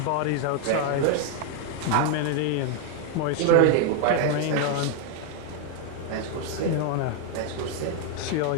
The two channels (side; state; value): both; different; correlation 0.01